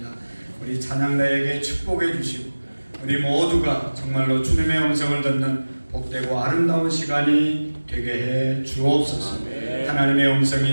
우리 찬양가에게 축복해 주시고 우리 모두가 정말로 주님의 음성을 듣는 복되고 아름다운 시간이 되게 해 주옵소서. 하나님의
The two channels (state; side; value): inverted; both; correlation -1.00